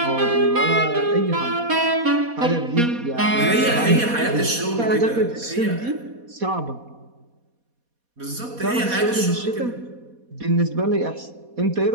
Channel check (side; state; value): left; late; 4.2 ms